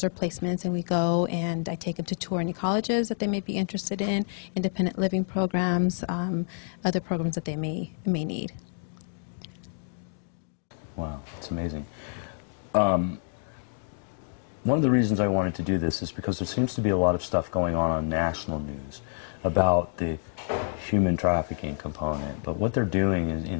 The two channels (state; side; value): silent; right; digital silence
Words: or placements, and we go and I take them to tour any colleges that they may be interested in, independent living programs, other programs that they may need. Wow, that's amazing. One of the reasons I wanted to do this is because there seems to be a lot of stuff going on national news about the human trafficking component, but what they're doing